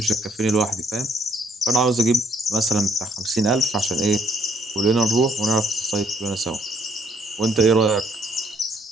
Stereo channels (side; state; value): both; normal; correlation 0.67